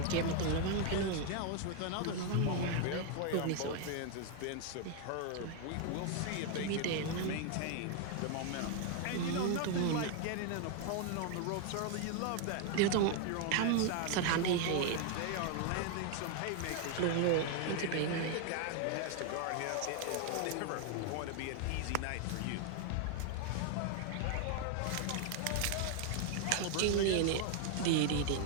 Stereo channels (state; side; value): different; both; correlation 0.00